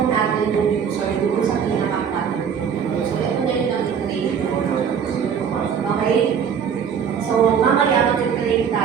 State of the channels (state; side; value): quieter; left; 7.4 dB